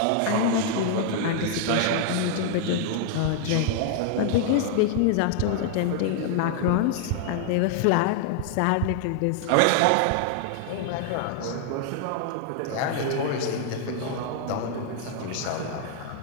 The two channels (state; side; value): different; both; correlation -0.01